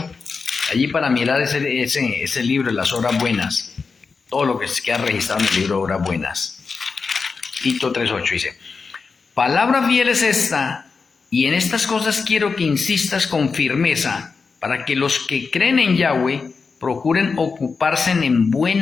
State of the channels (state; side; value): quieter; right; 4.8 dB